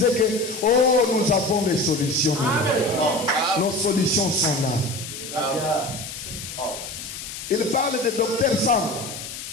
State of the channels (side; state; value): left; noise; hiss, 10 dB below the sound